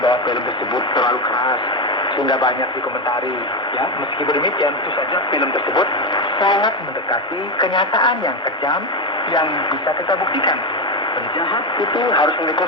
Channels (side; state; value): both; normal; correlation 0.12